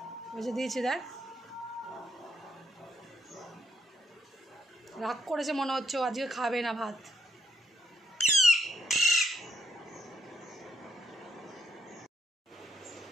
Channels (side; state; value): both; normal; correlation 0.75